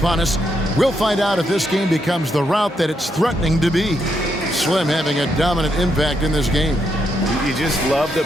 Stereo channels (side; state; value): both; normal; correlation 0.79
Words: us, we'll find out if this game becomes the route that it's threatening to be. Slim having a dominant impact in this game. You just love the